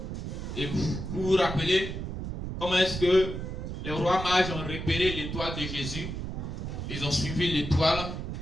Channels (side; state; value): right; noise; rumble, 5 dB below the sound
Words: Et vous vous rappelez comment est-ce que les rois mages ont repéré l'étoile de Jésus? Ils ont suivi l'étoile